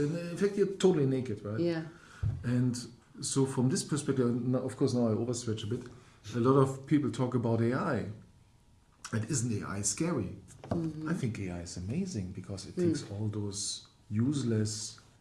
in fact you're totally naked, right? Yeah. And so from this perspective, of course now I overstretch a bit, a lot of people talk about AI. And isn't AI scary? I think AI is amazing because it takes all those useless,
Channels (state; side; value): identical; both; correlation 1.00